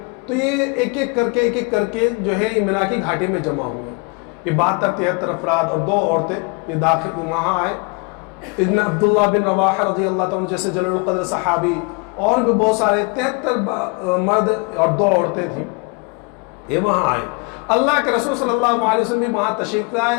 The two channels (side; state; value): right; quieter; 30.8 dB